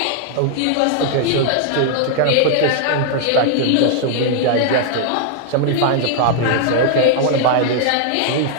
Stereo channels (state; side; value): different; both; correlation 0.00